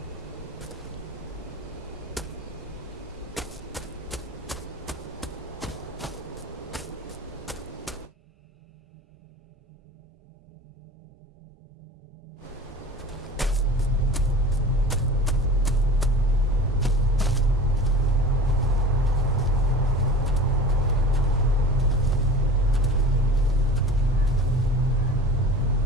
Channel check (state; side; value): normal; both; correlation 0.37